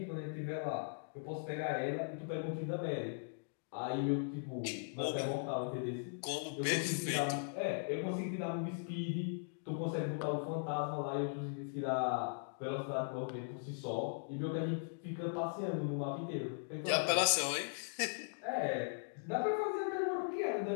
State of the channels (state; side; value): silent; right; digital silence